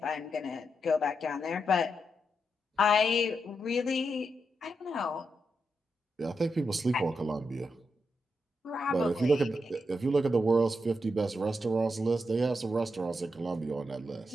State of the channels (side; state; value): both; normal; correlation 0.84